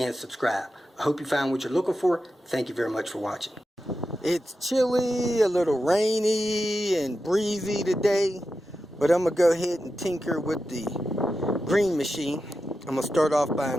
subscribe. I hope you found what you're looking for. Thank you very much for watching. It's chilly, a little rainy and breezy today, but I'm going to go ahead and tinker with the green machine. I'm going to start off by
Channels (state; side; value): normal; both; correlation 0.90